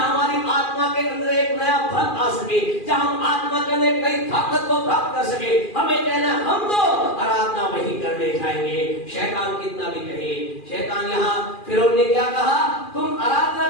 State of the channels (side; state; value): right; late; 2.4 ms